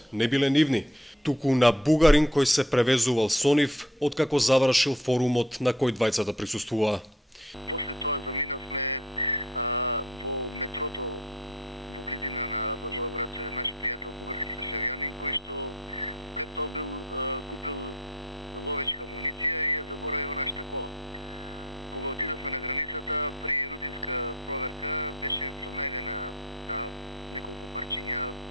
не биле нивни, туку на бугарин кој се превезувал со нив откако завршил форумот на кој двајцата присуствуваа. После тоа заминавме во метрото во близина на Благоевград, наш пријател бугарски државјанин кој што пред тоа купил ловечка муниција и ја заборави во нашата кола. Кога отидовме на границата, при рутинска проверка беше пронајдена неколку парчиња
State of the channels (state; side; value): normal; both; correlation 0.51